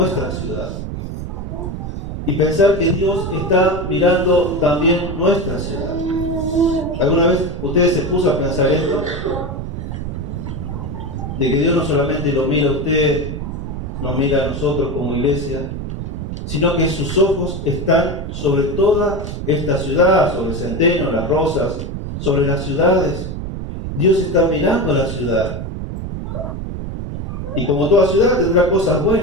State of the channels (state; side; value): noise; right; rumble, 6 dB below the sound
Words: ciudad, y pensar que Dios está mirando también nuestra ciudad. ¿Alguna vez ustedes se puso a pensar esto? De que Dios no solamente lo mira a usted, nos mira a nosotros como iglesia, sino que sus ojos están sobre toda esta ciudad, sobre Centeno, Las Rosas, sobre las ciudades. Dios está mirando a la ciudad. Y como toda ciudad tendrá cosas